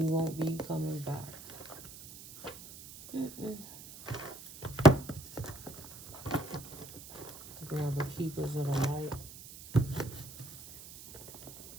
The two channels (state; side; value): noise; right; hiss, 15 dB below the sound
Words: you won't be coming back. Grab the keepers of the light.